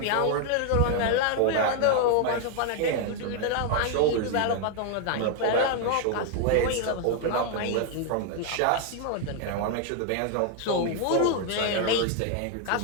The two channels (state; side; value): different; both; correlation 0.00